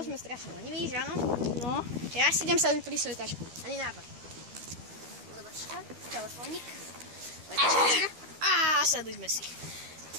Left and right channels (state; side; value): late; left; 12 ms